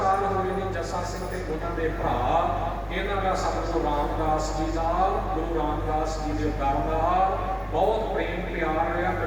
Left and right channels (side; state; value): both; identical; correlation 1.00